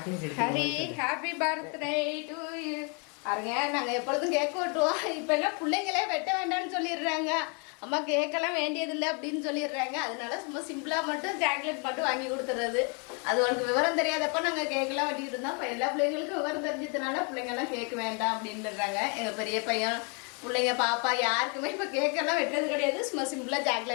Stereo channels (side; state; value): right; quieter; 35.9 dB